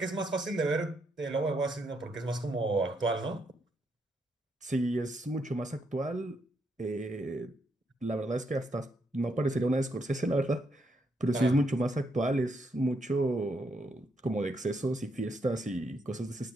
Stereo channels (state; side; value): normal; both; correlation 0.77